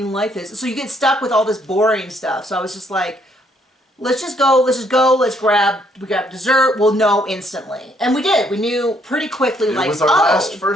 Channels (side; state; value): both; normal; correlation 0.69